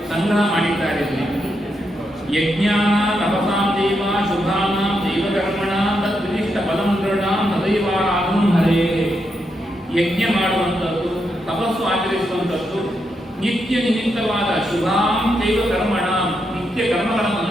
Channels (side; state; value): both; normal; correlation 0.82